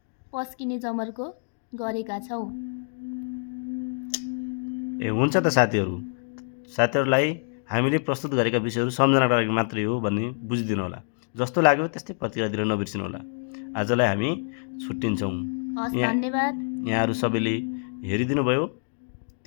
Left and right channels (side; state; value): right; silent; digital silence